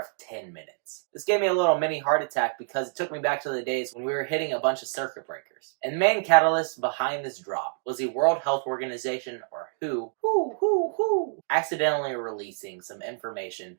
10 minutes. This gave me a little mini heart attack because it took me back to the days when we were hitting a bunch of circuit breakers. And the main catalyst behind this drop was the World Health Organization, or WHO, accidentally releasing some information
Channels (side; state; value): left; silent; digital silence